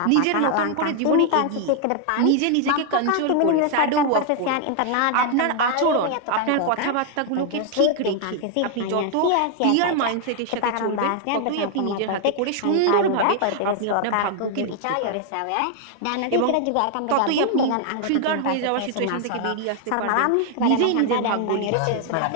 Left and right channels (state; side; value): different; both; correlation 0.00